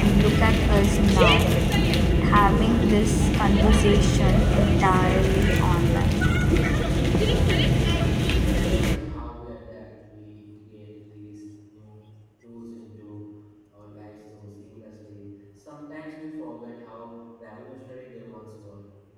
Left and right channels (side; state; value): both; identical; correlation 1.00